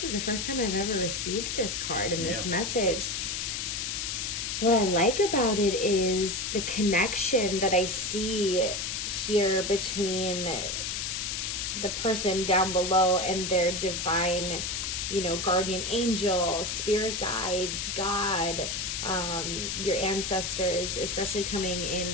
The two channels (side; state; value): left; noise; hiss, 2 dB below the sound